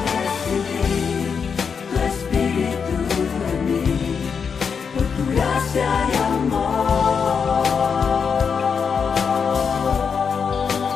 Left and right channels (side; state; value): right; quieter; 6.2 dB